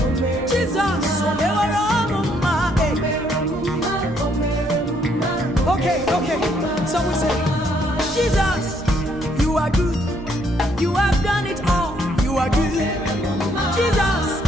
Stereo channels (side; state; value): both; normal; correlation 0.69